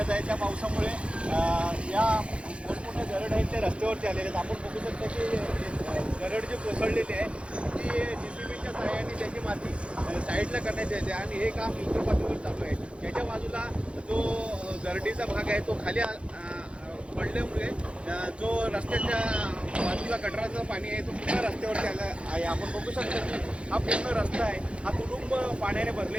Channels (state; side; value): late; left; 0.059 ms